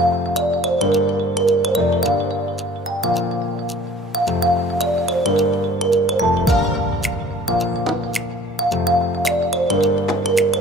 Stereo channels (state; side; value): normal; both; correlation 0.50